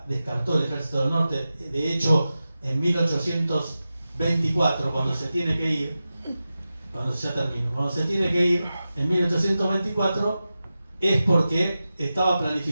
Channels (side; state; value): both; inverted; correlation -0.93